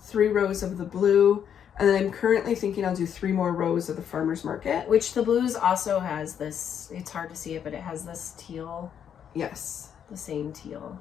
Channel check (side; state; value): right; quieter; 8.6 dB